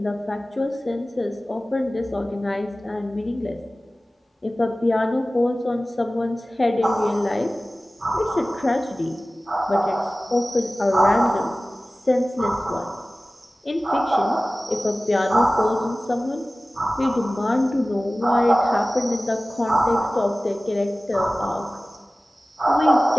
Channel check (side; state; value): both; normal; correlation 0.97